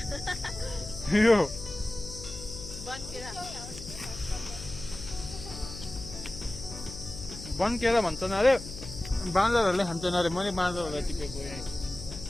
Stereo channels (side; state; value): left; noise; hum, 12 dB below the sound